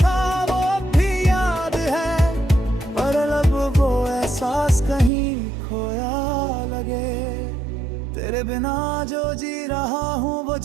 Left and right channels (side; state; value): left; drops out; at 5.1 s